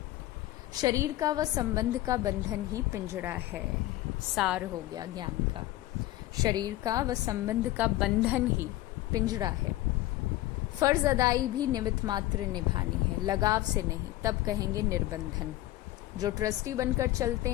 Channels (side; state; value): right; quieter; 16.2 dB